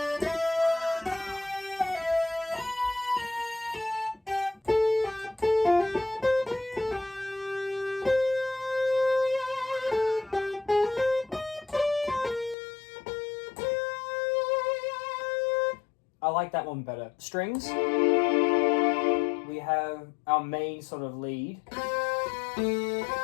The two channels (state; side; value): drops out; right; at 12.6 s